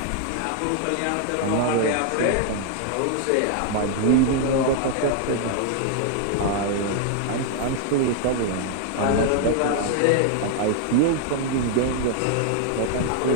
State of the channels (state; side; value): different; both; correlation 0.00